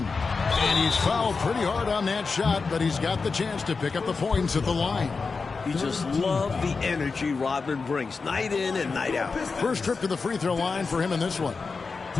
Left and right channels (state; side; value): quieter; right; 4.6 dB